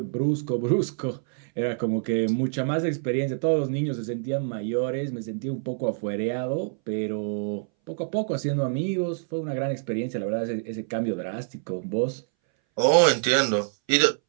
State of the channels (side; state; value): left; silent; 60 dB below the other